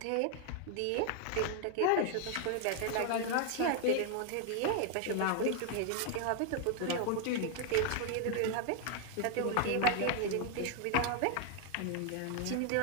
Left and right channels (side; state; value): both; different; correlation 0.00